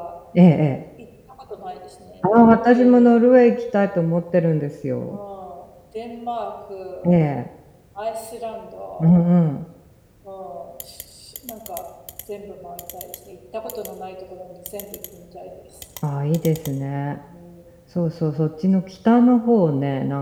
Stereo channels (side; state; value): both; identical; correlation 1.00